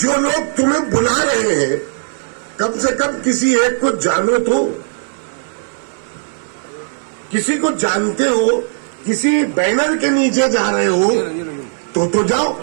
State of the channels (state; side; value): silent; left; digital silence